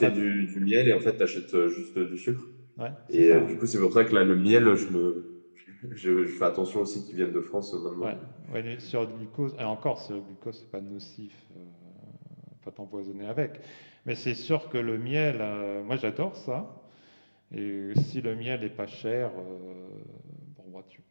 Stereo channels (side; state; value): both; inverted; correlation -1.00